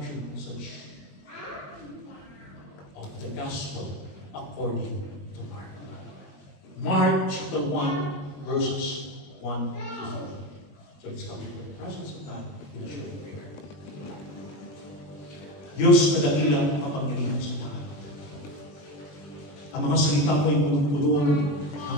message of the gospel according to Mark. Mark chapter 1, verses 1 to 4. So let's come to the presence of God in a short prayer. Diyos na dakilang kapangyarihan sa lahat. Ang mga salita mo ay punong-puno ng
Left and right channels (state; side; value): late; right; 21 ms